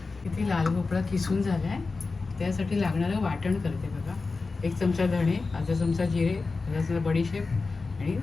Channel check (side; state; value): right; quieter; 4.0 dB